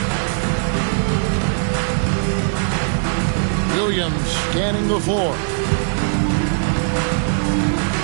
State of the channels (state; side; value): silent; left; 66 dB below the other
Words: Williams scanning the floor.